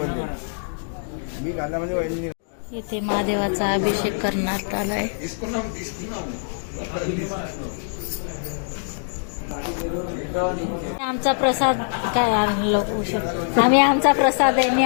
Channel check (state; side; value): silent; right; digital silence